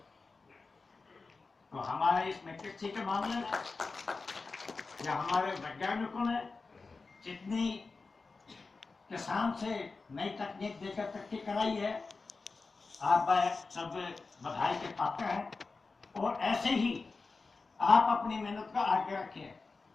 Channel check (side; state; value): right; quieter; 4.1 dB